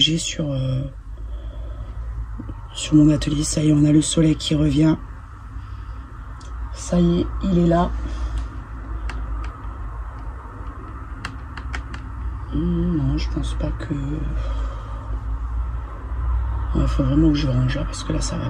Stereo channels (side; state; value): both; identical; correlation 1.00